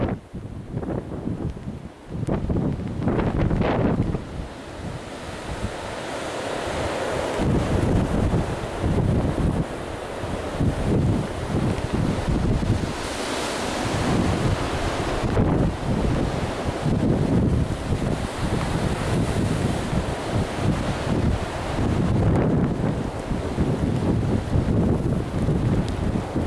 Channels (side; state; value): both; identical; correlation 1.00